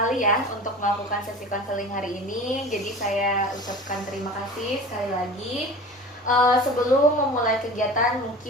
ya untuk melakukan sesi konseling hari ini. Jadi saya ucapkan terima kasih sekali lagi. Sebelum memulai kegiatan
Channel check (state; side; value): normal; both; correlation 0.37